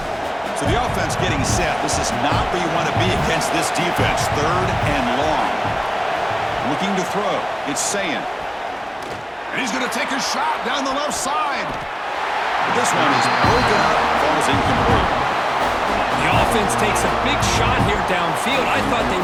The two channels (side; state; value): both; identical; correlation 1.00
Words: Getting set. This is not where you want to be against this defense. Third and long. Looking to throw. It's Sayin. And he's going to take a shot down the left side. But this one is broken up. Falls incomplete. The offense takes a big shot here downfield. I thought they